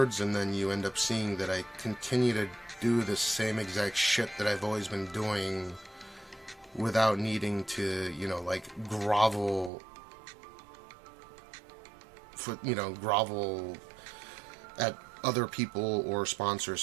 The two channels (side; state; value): left; drops out; at 9.7 s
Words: and then you end up seeing that I continue to do the same exact shit that I've always been doing without needing to, you know, like grovel at other people or